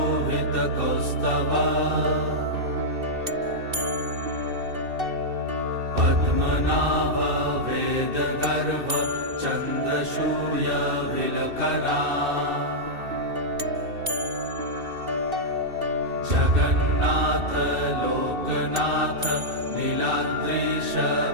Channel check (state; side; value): late; left; 2.7 ms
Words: पद्मनाभ वेदगर्भ चन्द्रसूर्यविलकना जगन्नाथ लोकनाथ नीलाद्रीश